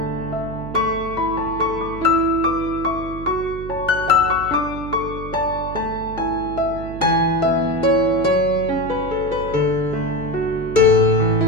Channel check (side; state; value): right; noise; hum, 11 dB below the sound